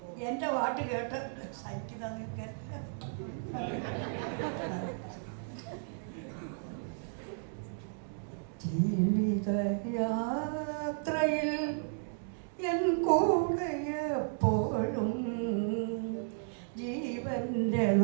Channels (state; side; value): silent; left; digital silence